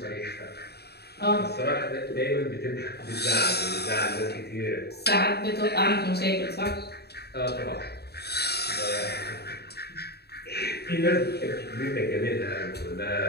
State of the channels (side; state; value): right; late; 0.47 ms